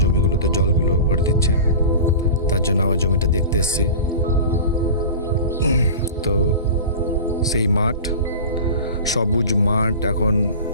জমিগুলোতে জলগুলো ভরে দিচ্ছে। তার জন্য আমার জমিটা দেখতে এসেছি। তো সেই মাঠ, সবুজ মাঠ এখন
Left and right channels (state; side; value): inverted; both; correlation -0.34